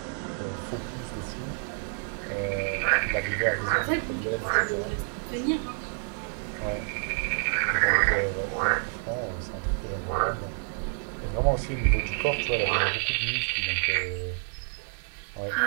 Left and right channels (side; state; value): left; silent; 59 dB below the other